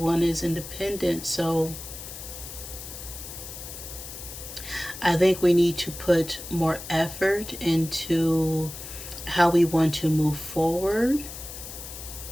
is independent. So I think we need to put more effort into how we want to move forward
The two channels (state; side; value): noise; left; hiss, 11 dB below the sound